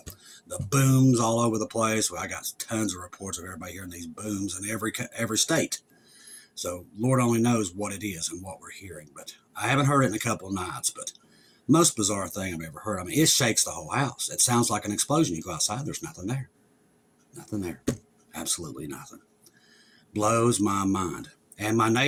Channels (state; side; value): identical; both; correlation 1.00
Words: The booms all over the place. Well, I got tons of reports of everybody hearing these booms in every state. So Lord only knows what it is and what we're hearing. But I haven't heard it in a couple of nights. But most bizarre thing I've ever heard. I mean, it shakes the whole house. It sounds like an explosion. You go outside, there's nothing there. Nothing there. Absolutely nothing. Blows my mind. And my